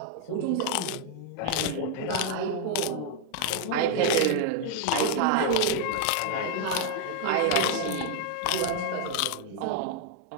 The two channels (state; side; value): different; both; correlation 0.00